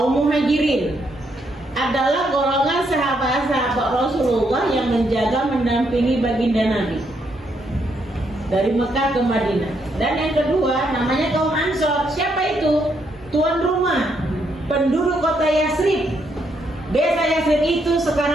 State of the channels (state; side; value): normal; both; correlation 0.76